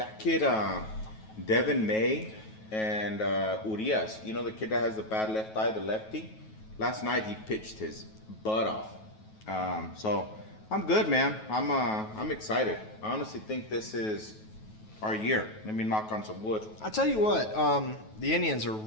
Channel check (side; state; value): right; late; 9.3 ms